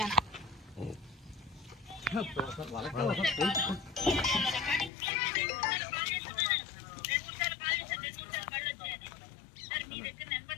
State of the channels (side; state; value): right; drops out; at 4.9 s